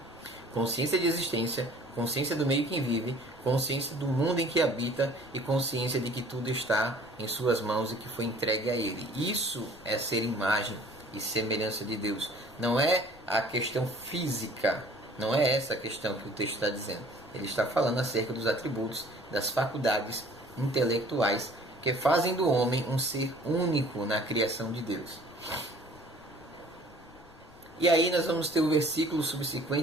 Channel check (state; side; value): noise; left; rumble, 25 dB below the sound